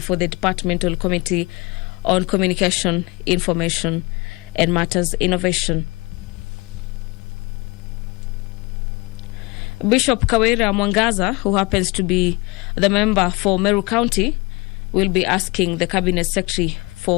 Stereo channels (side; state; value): right; quieter; 25.5 dB